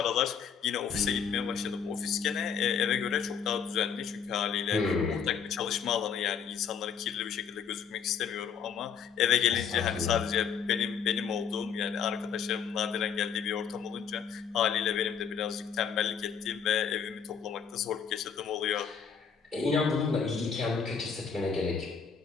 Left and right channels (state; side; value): quieter; right; 7.0 dB